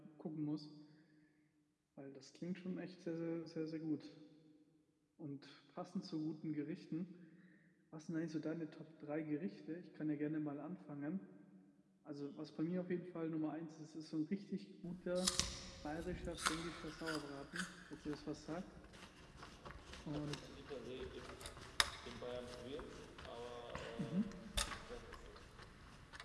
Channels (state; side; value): identical; both; correlation 1.00